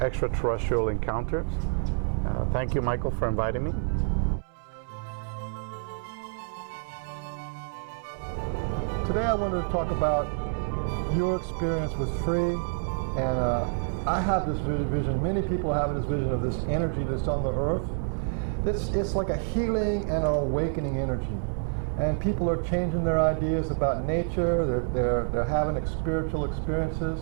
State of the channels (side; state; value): left; silent; 59 dB below the other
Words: Encounters. Thank you, Michael, for inviting me. Today I wanted to talk about your experience with Free, and I have this vision, many people have this vision of this energy that's on the earth. It's like a healing and an awakening energy. And people are changing their ideas about nature, they're having spiritual experiences.